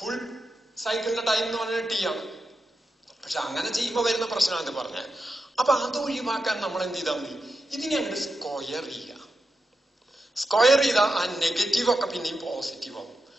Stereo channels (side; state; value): both; normal; correlation 0.88